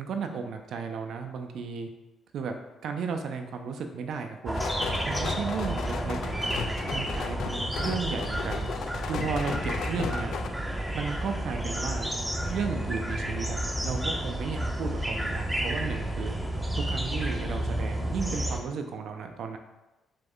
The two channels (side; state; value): both; normal; correlation 0.82